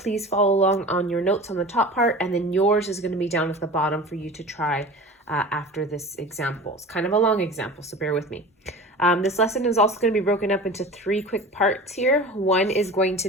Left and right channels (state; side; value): normal; both; correlation 0.36